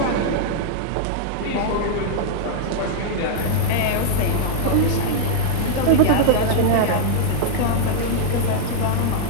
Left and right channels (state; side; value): different; both; correlation -0.01